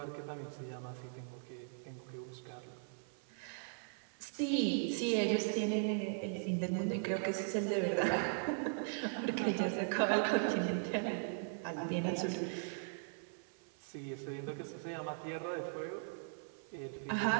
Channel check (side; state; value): left; silent; 52 dB below the other